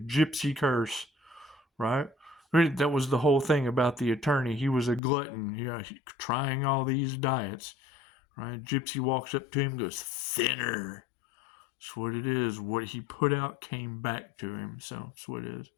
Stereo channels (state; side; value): drops out; right; at 5.0 s